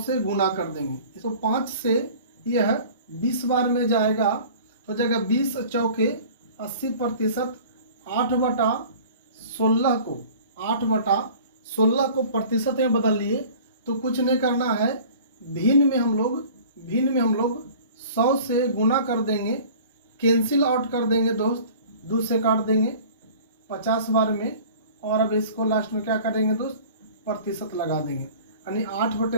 से गुना कर देंगे। तो 5 से यह 20 बार में जाएगा, हो जाएगा 20 चौके 80%। 8/16 को प्रतिशत में बदल लिए। तो कुछ नहीं करना है, भिन्न में हम लोग 100 से गुना कर देंगे, कैंसिल आउट कर देंगे दोस्त, 2 से काट देंगे 50 बार में। और अब इसको लास्ट में क्या करेंगे दोस्त, प्रतिशत लगा देंगे। यानी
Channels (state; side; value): inverted; both; correlation -0.45